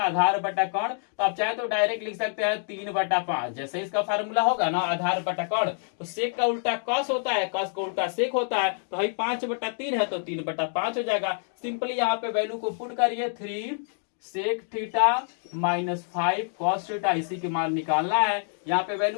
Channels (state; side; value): silent; right; 60 dB below the other